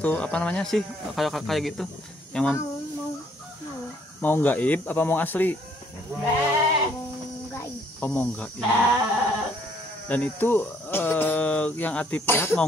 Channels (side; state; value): both; normal; correlation 0.65